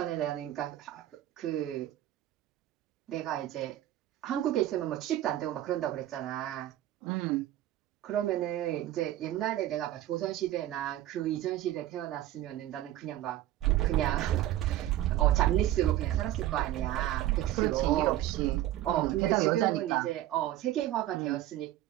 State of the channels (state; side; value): quieter; left; 13.8 dB